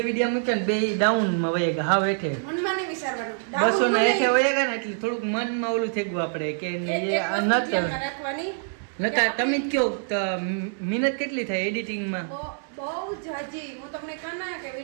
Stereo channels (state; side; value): silent; left; 61 dB below the other